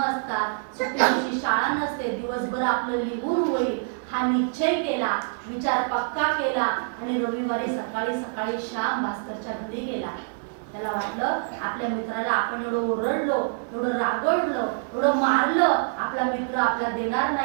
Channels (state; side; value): silent; left; digital silence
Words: असतात. सुट्टी दिवशी शाळा नसते, दिवसभर आपलं लिहून होईल हा निश्चय केला, विचार पक्का केला आणि रविवारी सकाळी सकाळी श्याम भास्करच्या घरी गेला. त्याला वाटलं आपल्या मित्राला आपण एवढं ओरडलो, एवढं रागवलो, एवढं मारलं, आपला मित्र आपल्याला देणार